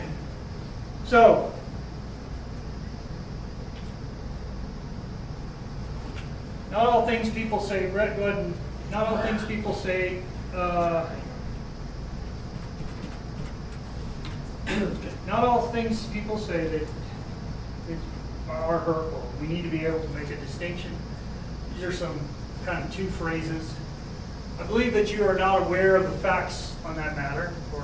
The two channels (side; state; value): both; identical; correlation 1.00